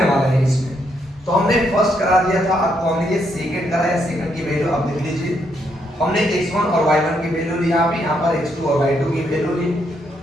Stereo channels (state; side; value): normal; both; correlation 0.76